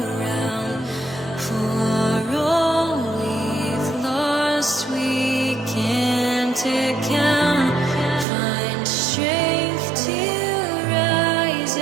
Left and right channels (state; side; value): drops out; left; at 8.2 s